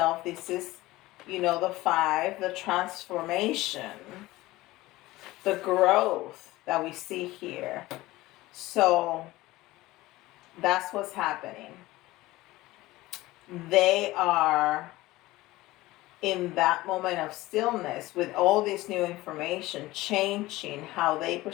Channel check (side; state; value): right; quieter; 18.5 dB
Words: This is, the 5, the transformation, the growth that we see here. So that's what's happening. They are in that moment of stillness with all this new information, changing how they